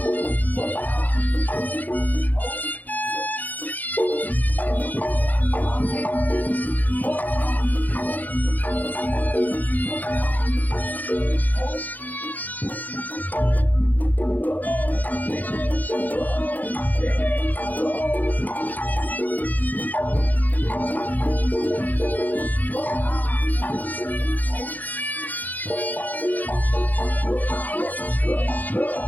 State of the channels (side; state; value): right; late; 0.082 ms